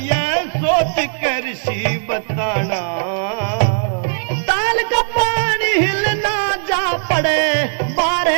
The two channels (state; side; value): silent; left; 67 dB below the other